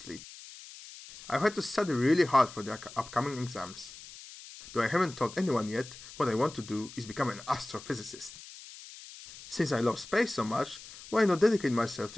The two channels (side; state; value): left; noise; hiss, 16 dB below the sound